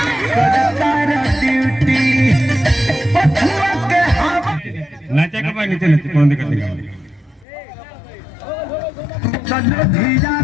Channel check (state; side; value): drops out; right; at 7.5 s